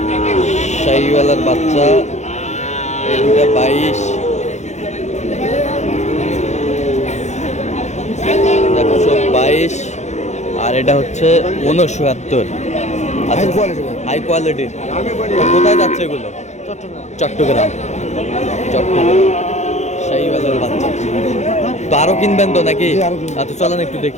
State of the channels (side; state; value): right; late; 0.33 ms